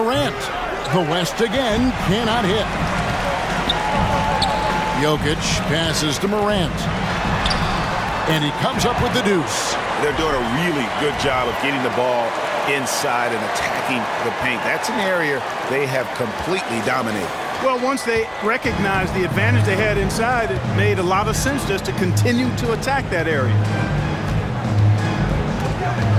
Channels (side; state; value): both; identical; correlation 1.00